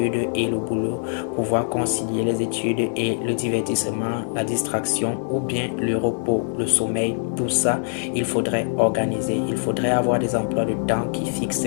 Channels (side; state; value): right; silent; 63 dB below the other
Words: et le boulot, pouvoir concilier les études et le divertissement, la distraction ou bien le repos, le sommeil. Tout ça, il faudrait organiser. Il faudrait avoir des emplois de temps qui